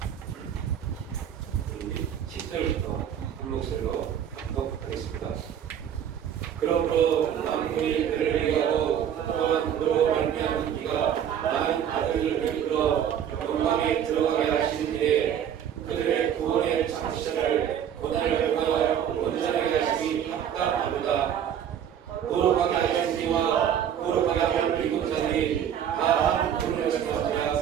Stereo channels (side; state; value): left; quieter; 9.3 dB